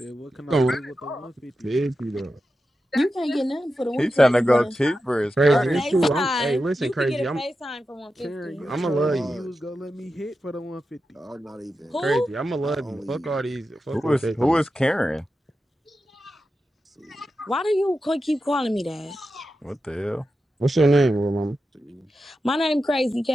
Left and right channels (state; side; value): normal; both; correlation 0.91